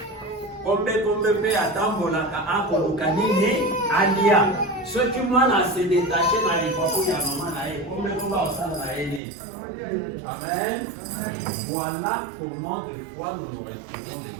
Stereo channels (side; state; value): left; drops out; at 9.2 s